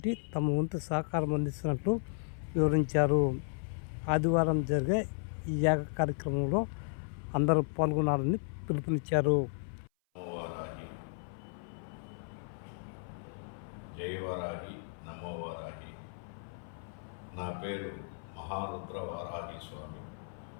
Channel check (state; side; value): silent; right; 55 dB below the other